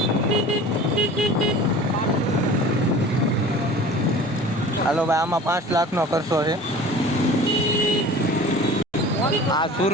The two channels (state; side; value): normal; both; correlation 0.41